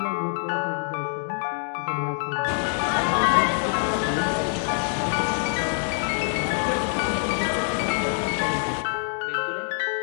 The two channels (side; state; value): right; silent; 62 dB below the other